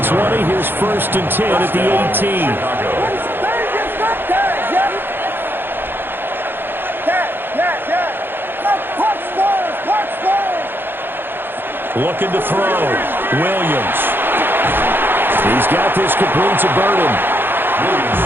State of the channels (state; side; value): late; left; 0.10 ms